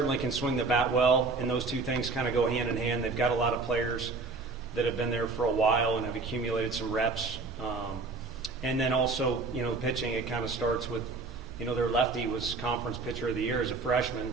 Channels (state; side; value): quieter; left; 3.9 dB